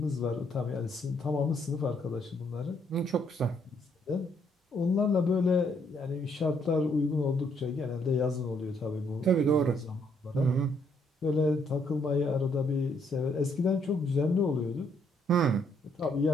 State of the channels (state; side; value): normal; both; correlation 0.70